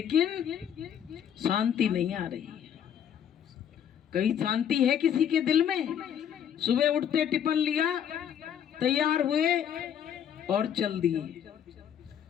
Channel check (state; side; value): quieter; right; 9.1 dB